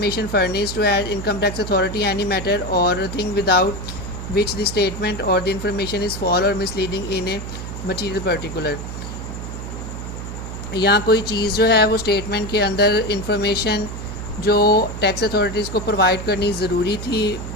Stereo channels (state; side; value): noise; right; hum, 8 dB below the sound